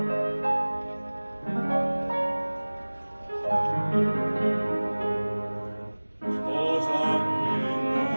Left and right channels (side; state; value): both; inverted; correlation -1.00